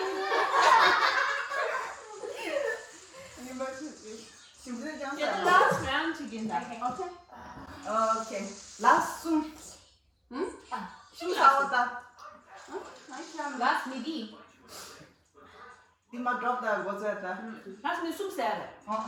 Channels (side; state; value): both; identical; correlation 1.00